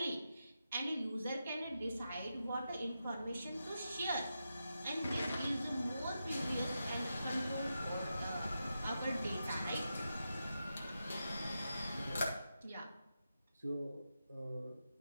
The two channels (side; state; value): both; inverted; correlation -0.88